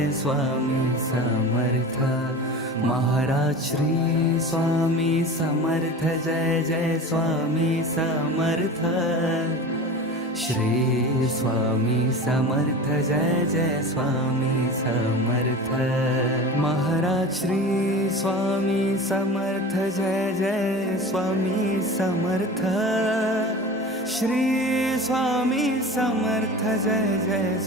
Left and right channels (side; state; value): both; normal; correlation 0.33